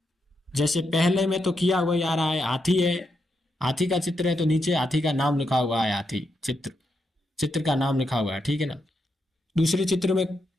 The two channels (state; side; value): normal; both; correlation 0.82